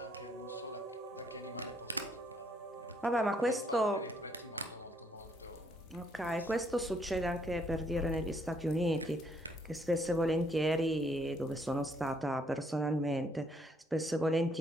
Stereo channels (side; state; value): both; normal; correlation 0.69